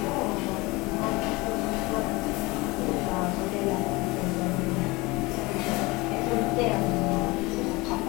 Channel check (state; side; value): quieter; right; 23.2 dB